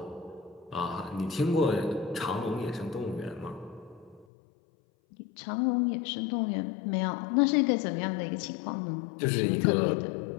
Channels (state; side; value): drops out; right; at 4.2 s